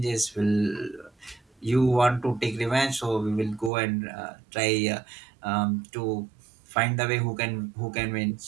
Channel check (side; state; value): left; drops out; at 3.7 s